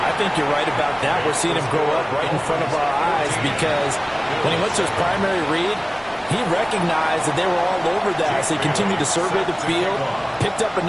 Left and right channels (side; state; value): both; identical; correlation 1.00